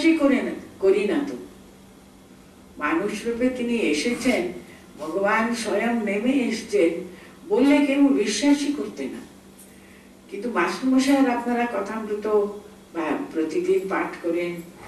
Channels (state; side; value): identical; both; correlation 1.00